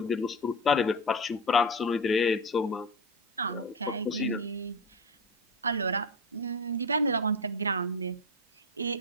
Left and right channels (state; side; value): normal; both; correlation 0.18